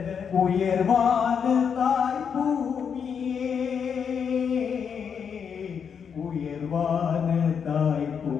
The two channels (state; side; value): quieter; right; 7.0 dB